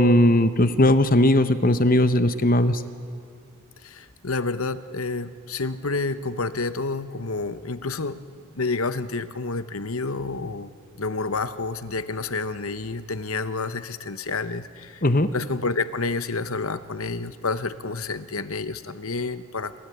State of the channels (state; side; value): normal; both; correlation 0.45